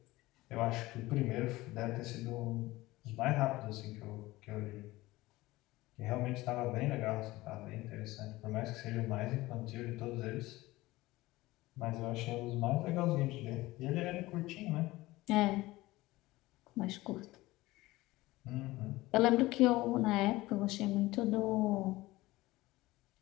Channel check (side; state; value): right; quieter; 18.9 dB